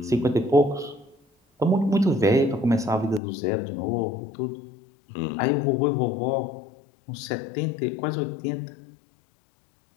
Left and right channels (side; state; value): right; drops out; at 3.2 s